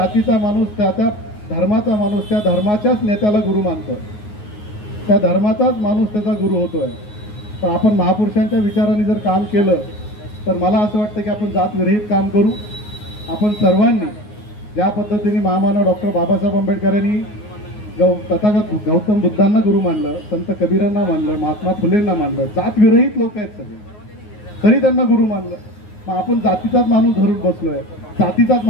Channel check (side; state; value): right; late; 9.5 ms